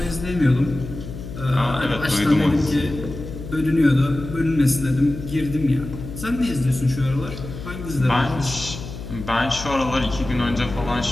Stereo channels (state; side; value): noise; left; hum, 10 dB below the sound